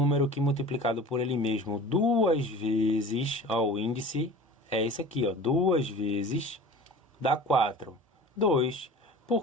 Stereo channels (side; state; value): both; normal; correlation 0.39